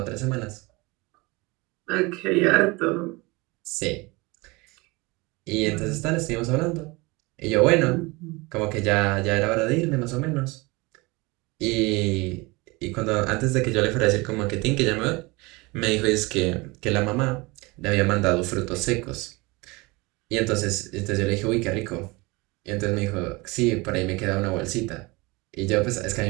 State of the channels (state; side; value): quieter; left; 24.6 dB